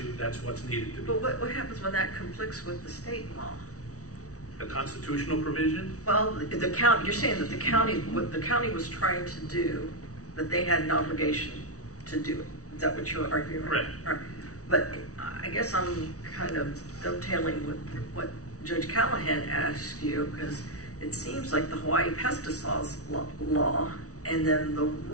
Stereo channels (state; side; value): late; right; 0.66 ms